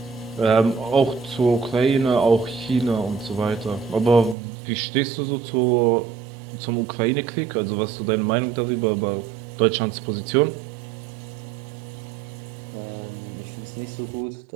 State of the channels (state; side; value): drops out; left; at 4.4 s